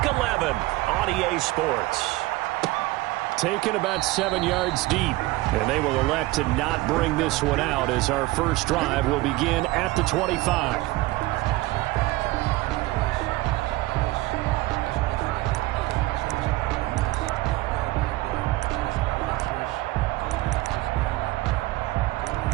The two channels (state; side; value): quieter; left; 19.5 dB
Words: 11 on EA Sports. Taken about 7 yards deep, and they will elect to not bring this one out as our first drive will begin at the 25.